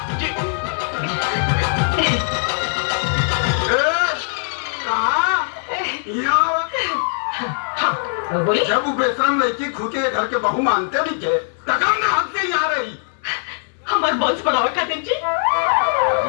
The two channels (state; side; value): silent; right; digital silence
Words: जी। कहाँ यहाँ बोली जब वो बेशरम लड़की खुद के घर के बहू मानते नहीं के तकम ने हद से यहाँ रही। हमारे बॉन्स बढ़ावा खातिर जी।